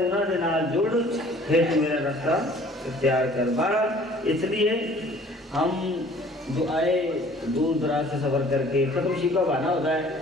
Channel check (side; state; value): both; normal; correlation 0.52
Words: نے نال جڑ پھر میرا رستہ اختیار کر۔ بہرحال اس لیے ہم جو آئے دور دراز سے سفر کر کے ختم شی کا بہانا ہوتا ہے